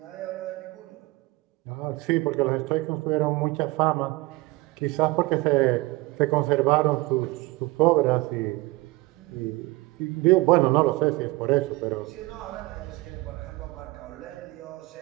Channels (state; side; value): quieter; left; 21.7 dB